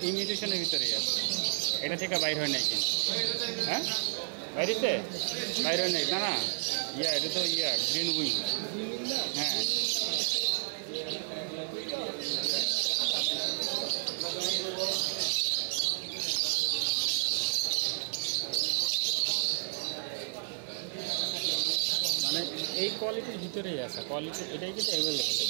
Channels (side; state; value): left; silent; digital silence